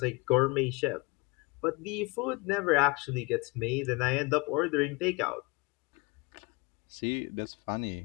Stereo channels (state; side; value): quieter; right; 27.5 dB